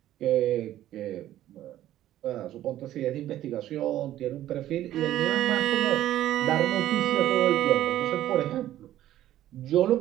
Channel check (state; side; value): quieter; left; 13.2 dB